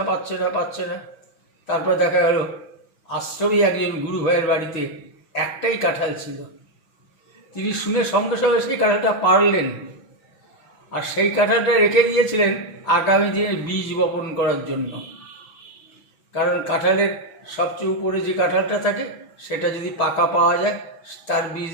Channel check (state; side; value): late; right; 6.3 ms